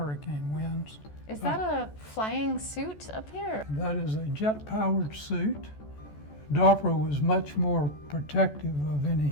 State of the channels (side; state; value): right; late; 14 ms